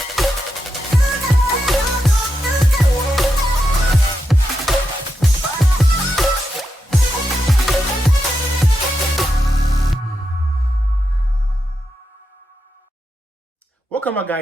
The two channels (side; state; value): both; normal; correlation 0.86